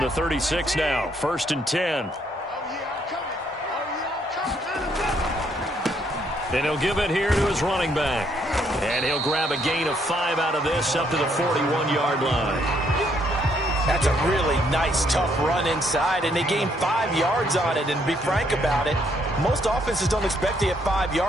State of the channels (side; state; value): both; normal; correlation 0.70